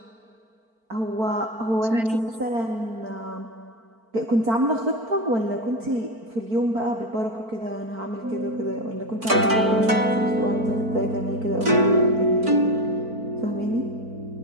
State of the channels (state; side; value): late; left; 4.5 ms